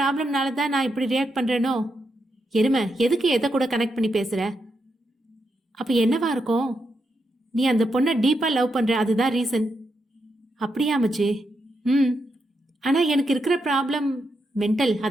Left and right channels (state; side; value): normal; both; correlation 0.83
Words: தான் நான் இப்படி ரியாக்ட் பண்றேனோ? எருமை, எதுக்கு எதை கூட கனெக்ட் பண்ணி பேசுற? அப்ப என்னவா இருக்கும்? நீ அந்த பொண்ணை டீப்பா லவ் பண்ற, அதுதான் ரீசன். அப்படியா மச்சி? ம். ஆனால் எனக்கு இருக்கிற ப்ராப்ளம் மென்டல்.